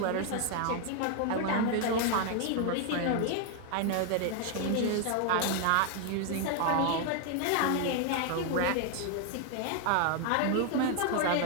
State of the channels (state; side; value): different; both; correlation 0.00